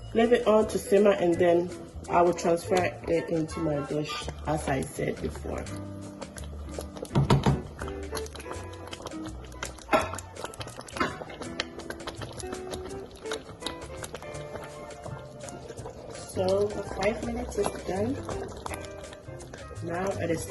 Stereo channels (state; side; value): identical; both; correlation 1.00